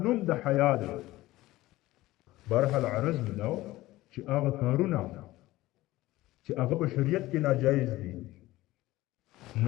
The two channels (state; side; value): quieter; right; 17.5 dB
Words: نوم د حیا دی برحال عرض ملو چې هغه کارونه چې هغه په شریعت کې ناجایز دي